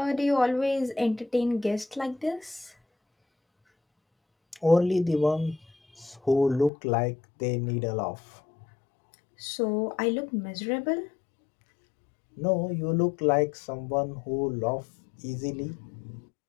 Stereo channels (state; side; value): drops out; right; at 6.7 s